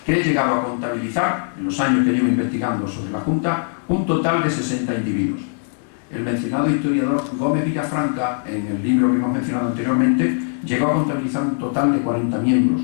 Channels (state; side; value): silent; right; 65 dB below the other